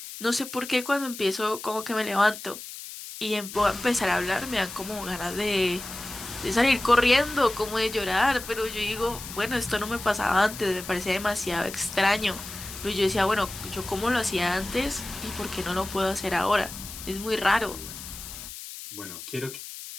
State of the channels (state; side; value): noise; left; hiss, 11 dB below the sound